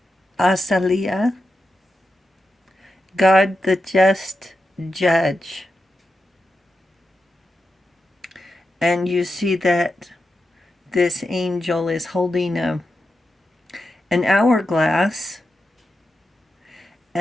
Asalia, God the just judge. And you see that this angel is holding an hourglass.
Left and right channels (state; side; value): normal; both; correlation 0.89